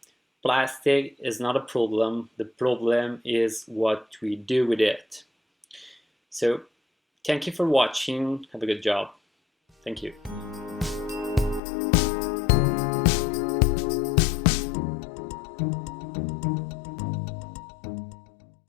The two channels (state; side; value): drops out; right; at 11.6 s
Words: plastic is not a problem, the problem is what we do with it. So thank you for watching, have a good job. Thank you.